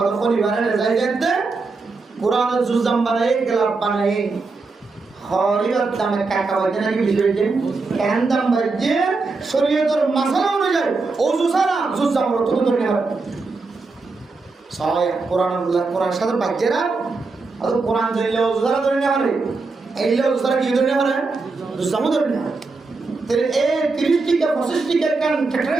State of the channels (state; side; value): quieter; left; 3.9 dB